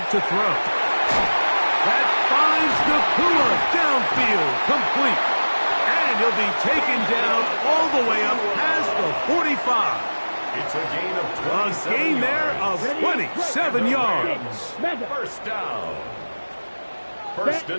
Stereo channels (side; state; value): both; inverted; correlation -1.00